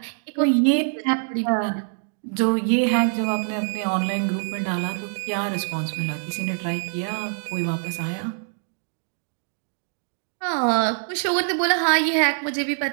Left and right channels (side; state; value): left; silent; digital silence